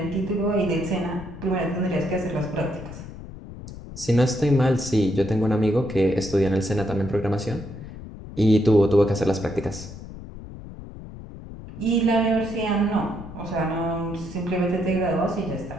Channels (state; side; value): noise; left; rumble, 13 dB below the sound